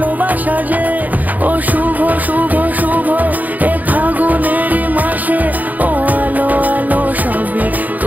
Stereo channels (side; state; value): left; late; 0.081 ms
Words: যে। ও শুভ শুভ শুভ এ ফাগুনেরই মাসে, ও আলো আলো সবই